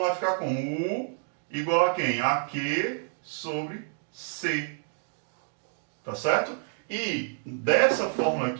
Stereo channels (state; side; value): silent; left; digital silence